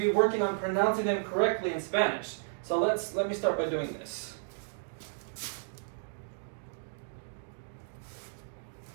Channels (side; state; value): left; silent; digital silence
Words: be working on pronouncing them correctly in Spanish. So let me start by doing this.